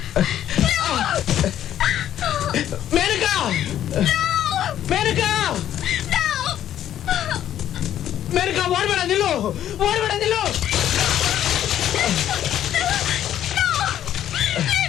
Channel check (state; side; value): quieter; right; 11.2 dB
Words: Menaka, Menaka, Menaka, ಓಡ್ಬೇಡ, ನಿಲ್ಲು, ಓಡ್ಬೇಡ, ನಿಲ್ಲು.